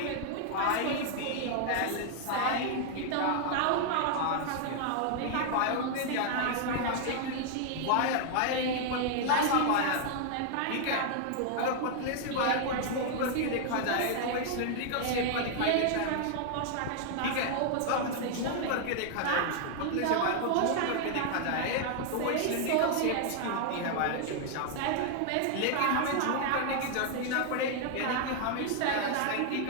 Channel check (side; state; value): both; different; correlation 0.00